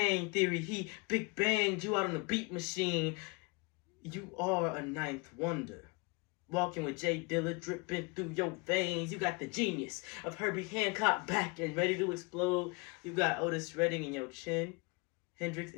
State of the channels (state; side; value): quieter; right; 29.4 dB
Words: Theory, he Big Banged you out on a beat machine. You are a ninth wonder. Walking with Jay Dilla dripping through your veins. You got the genius of Herbie Hancock back and ready to explode. You got Otis Redding in your chin, Hendrix